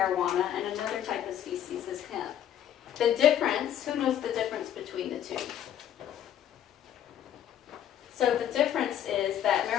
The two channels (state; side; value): quieter; right; 10.5 dB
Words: and another type of species is hemp. The difference, who knows the difference between the two? So the difference is that